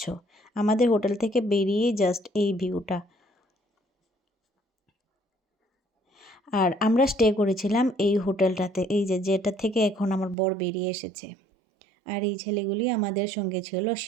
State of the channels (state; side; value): drops out; left; at 10.4 s